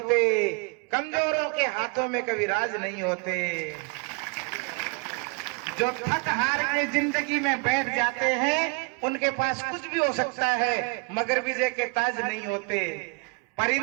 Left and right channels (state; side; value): quieter; left; 33.1 dB